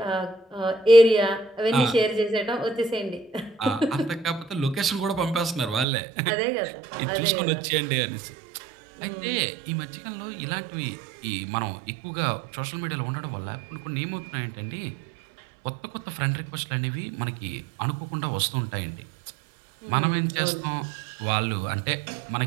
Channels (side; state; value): left; drops out; at 5.9 s